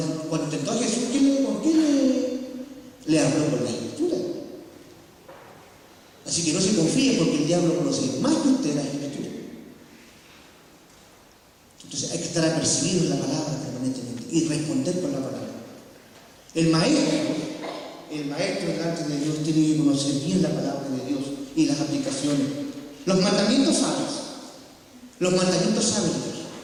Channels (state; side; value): identical; both; correlation 1.00